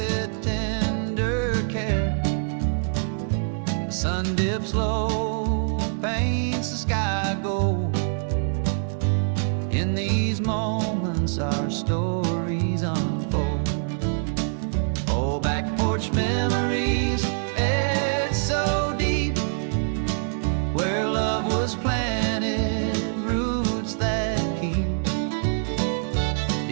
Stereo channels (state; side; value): silent; left; digital silence